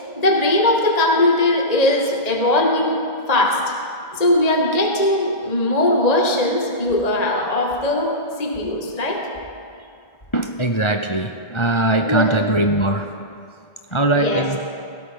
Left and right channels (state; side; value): late; right; 1.8 ms